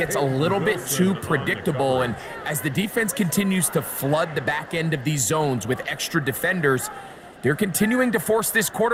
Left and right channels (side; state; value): both; identical; correlation 1.00